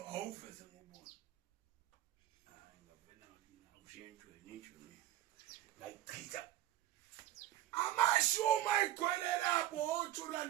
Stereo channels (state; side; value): quieter; left; 14.1 dB